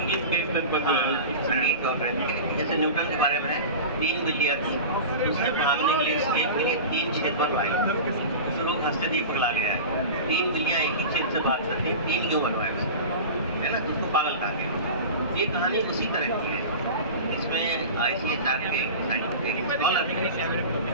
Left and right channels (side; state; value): both; inverted; correlation -0.32